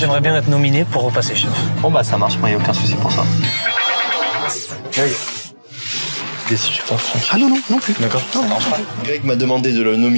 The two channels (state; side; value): inverted; both; correlation -1.00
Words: bien être nominé pour repasser chef. Bon bah ça marche, moi y a aucun souci pour ça. Ah non plus. D'accord. Greg m'a demandé de le